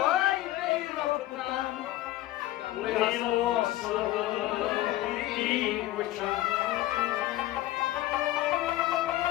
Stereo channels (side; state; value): right; quieter; 15.6 dB